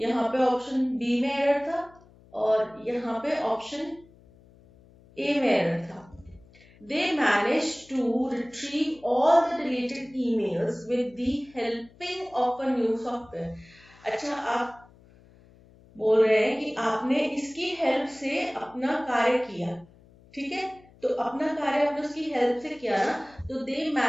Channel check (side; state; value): left; noise; hum, 26 dB below the sound